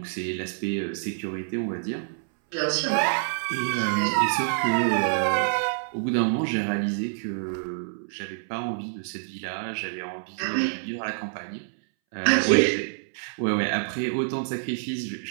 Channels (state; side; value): silent; left; 60 dB below the other